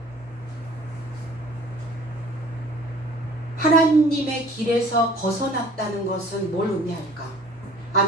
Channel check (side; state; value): both; normal; correlation 0.51